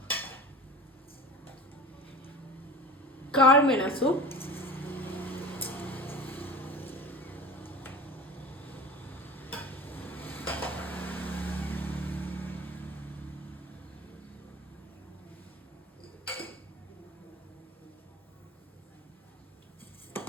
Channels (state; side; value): normal; both; correlation 0.36